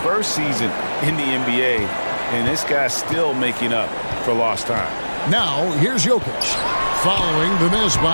season in the NBA, and this guy's still making up for lost time. Now, here's Jokic, following the miss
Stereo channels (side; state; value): both; inverted; correlation -1.00